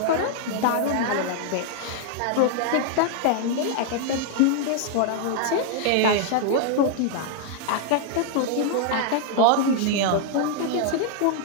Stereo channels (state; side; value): different; both; correlation 0.00